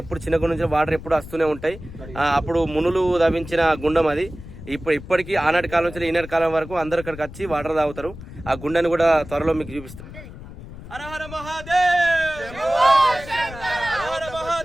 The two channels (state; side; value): noise; left; rumble, 14 dB below the sound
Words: ఎప్పుడు చిన్న గుండం నుంచి వాటర్ ఎప్పుడు వస్తూనే ఉంటాయి. అప్పుడు మునులు తవ్వించిన గుండం అది. ఇప్పటికీ ఆనాటి కాలం నుంచి ఈనాటి కాలం వరకు అందరు ఇక్కడికి వచ్చి వాటర్ తాగుతారు. ఆ గుండాన్ని కూడా త్వరలో మీకు చూపిస్తాం. హర హర మహాదేవ్, హర